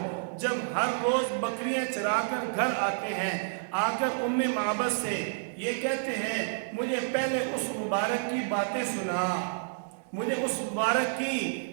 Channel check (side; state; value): left; silent; digital silence